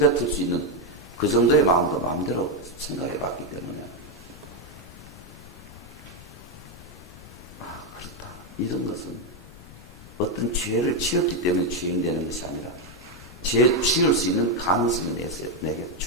수 있는 그 정도의 마음도 마음대로 생각해 봤기 때문에 그렇다. 이런 것은 어떤 죄를 지었기 때문에 죄인 되는 것이 아니라 죄 지을 수 있는 가능성이 내게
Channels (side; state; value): left; noise; rumble, 18 dB below the sound